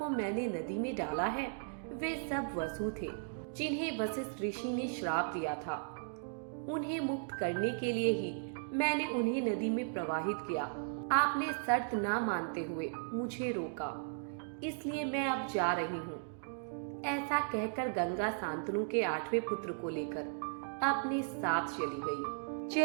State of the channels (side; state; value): left; silent; digital silence